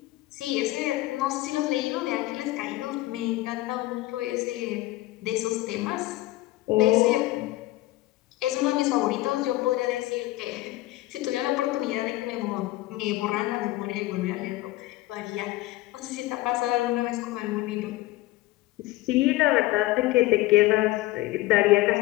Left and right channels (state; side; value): quieter; right; 17.8 dB